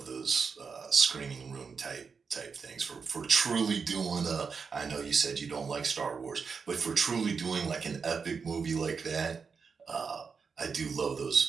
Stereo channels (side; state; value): left; quieter; 5.5 dB